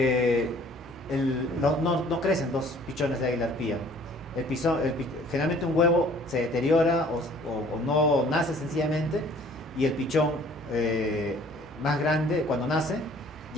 no crecen 2 pichones de águila arpía. Generalmente un huevo se deteriora o no nace sencillamente, y el pichón más grande cuando nace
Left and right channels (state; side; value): normal; both; correlation 0.54